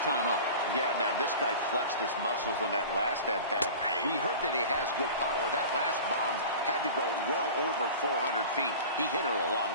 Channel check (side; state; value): both; inverted; correlation -0.37